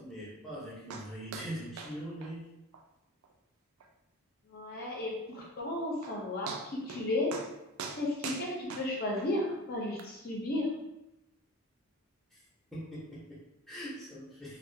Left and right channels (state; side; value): normal; both; correlation 0.36